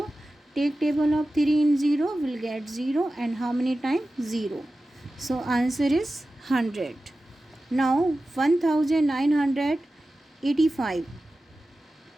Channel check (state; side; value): normal; both; correlation 0.94